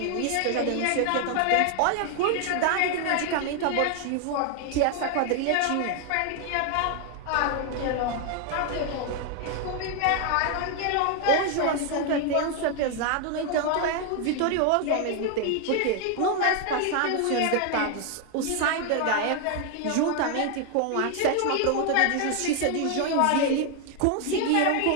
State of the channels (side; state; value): both; different; correlation 0.00